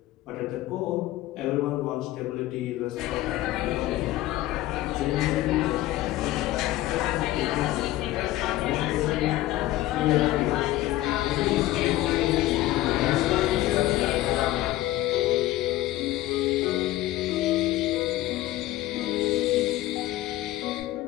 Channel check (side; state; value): right; quieter; 16.0 dB